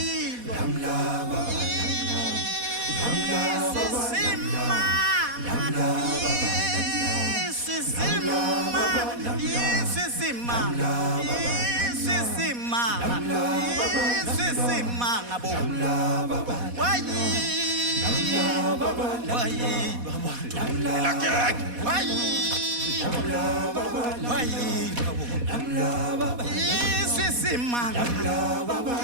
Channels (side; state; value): left; late; 4.1 ms